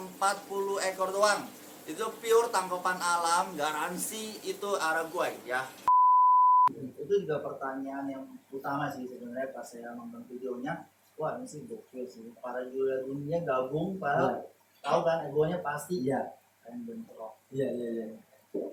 40 ekor doang. Itu pure tangkapan alam, garansi itu Araguay ya. Itu juga pertanyaan yang utama sih sebenarnya pas saya nonton videonya. Wah, ini sih gokil sih. Para juara dunia gabung, para tahu kan egonya pasti. Iya. Keren bentrok. Iya.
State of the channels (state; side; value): identical; both; correlation 1.00